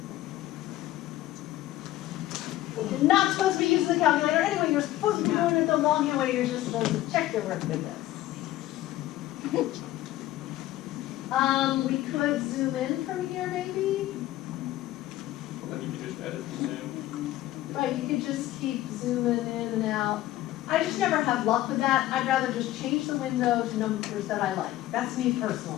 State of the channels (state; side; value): quieter; right; 15.2 dB